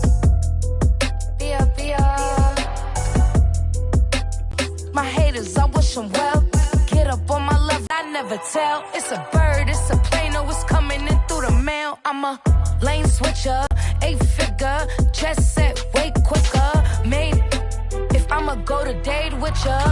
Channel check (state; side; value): identical; both; correlation 1.00